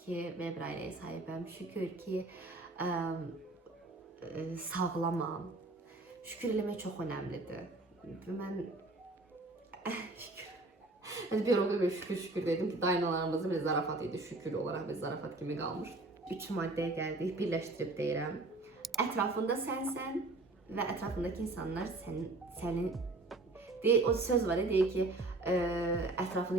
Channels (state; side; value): quieter; left; 3.0 dB